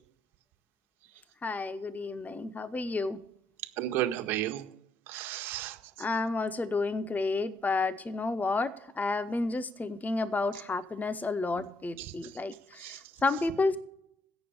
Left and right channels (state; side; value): normal; both; correlation 0.73